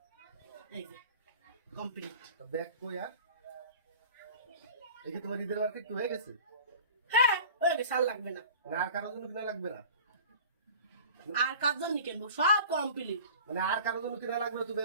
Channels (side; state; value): both; inverted; correlation -0.40